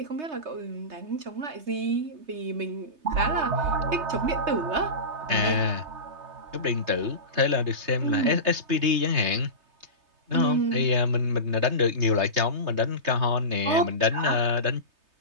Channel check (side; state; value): left; late; 3.3 ms